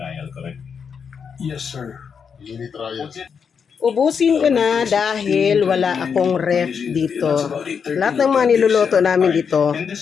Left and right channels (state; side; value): quieter; right; 6.5 dB